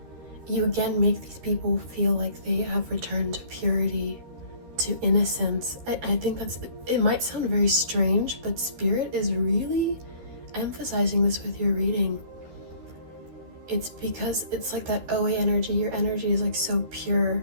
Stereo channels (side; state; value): left; late; 13 ms